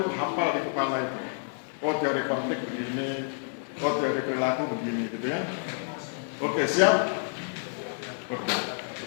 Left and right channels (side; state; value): right; silent; 59 dB below the other